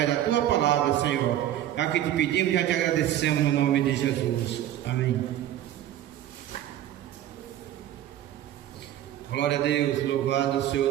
da Tua palavra, Senhor. É o que te pedimos e já te agradecemos no nome de Jesus. Amém. Glória a Deus, louvado seja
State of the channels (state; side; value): quieter; left; 12.1 dB